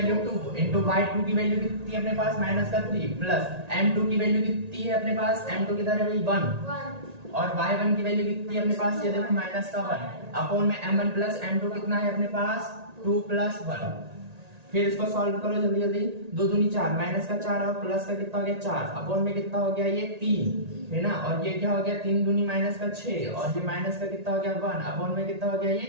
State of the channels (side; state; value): left; late; 1.8 ms